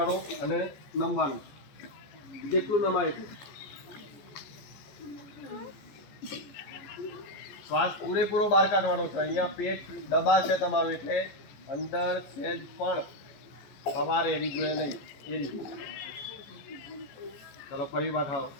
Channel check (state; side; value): late; right; 14 ms